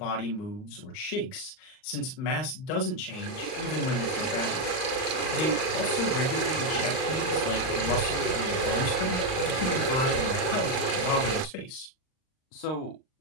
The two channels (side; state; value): right; late; 38 ms